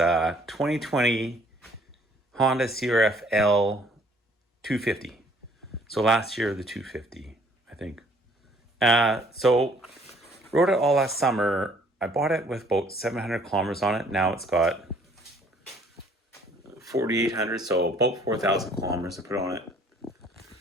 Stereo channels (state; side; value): normal; both; correlation 0.60